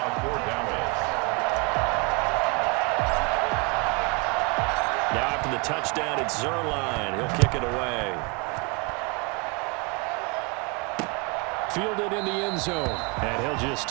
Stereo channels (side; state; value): left; quieter; 31.1 dB